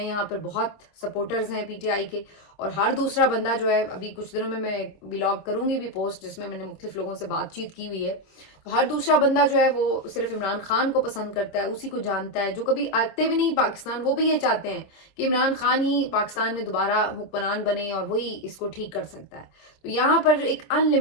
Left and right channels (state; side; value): late; right; 26 ms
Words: यहाँ पर, बहुत सपोर्टर्स हैं पीटीआई के, और हर दूसरा बंदा जो है, अभी कुछ दिनों में मैं व्लॉग करूंगी भी पोस्ट जिसमें मैंने मुख्तलिफ लोगों से बातचीत की हुई है, تو ہر دوسرا بندہ جو ہے وہ صرف عمران خان کو پسند کرتا ہے, اسی کو جانتا ہے. جو کبھی آتے بھی نہیں پاکستان, وہ بھی یہ چاہتے ہیں کہ عمران خان ہی پاکستان میں دوبارہ حکمران بنے اور وہی اس کو ٹھیک کر سکتا ہے. تو یہاں پر ایک ان